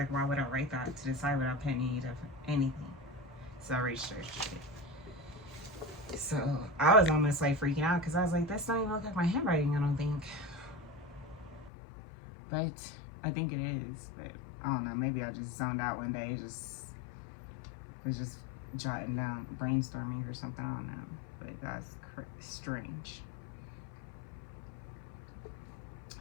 why would I write that to the side without putting any of anything? So I researched it. So I was almost like freaking out, because I was like, this don't even look like my handwriting, I don't think. But I think it is. But I don't know, maybe I just zoned out one day, was just jotting down, brainstorming or something, I don't know. But that's strange.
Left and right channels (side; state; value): right; drops out; at 11.7 s